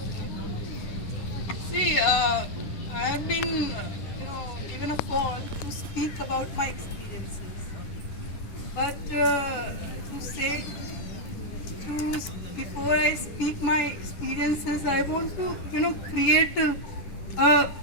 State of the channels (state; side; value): late; right; 11 ms